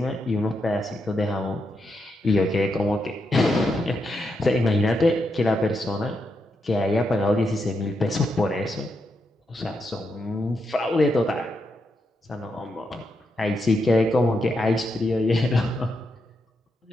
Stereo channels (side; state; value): both; normal; correlation 0.83